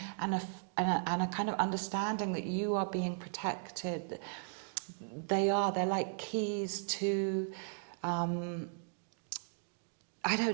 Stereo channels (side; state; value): left; silent; digital silence